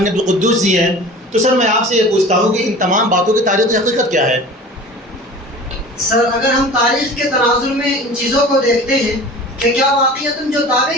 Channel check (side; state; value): both; normal; correlation 0.40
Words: عبدالقدوس جی ہیں۔ تو سر میں آپ سے یہ پوچھتا ہوں کہ ان تمام باتوں کی تاریخ حقیقت کیا ہے؟ سر اگر ہم تاریخ کے تناظر میں ان چیزوں کو دیکھتے ہیں کہ کیا واقعتاً جو